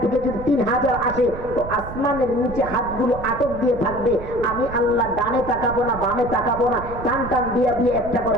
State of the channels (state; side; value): noise; right; rumble, 11 dB below the sound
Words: থেকে যদি 3000 আসে, তো আসমানের নিচে হাতগুলো আটক দিয়ে থাকবে। আমি আল্লাহ ডানে তাকাবো না, বামে তাকাবো না, টান টান দিয়ে দিয়ে একটা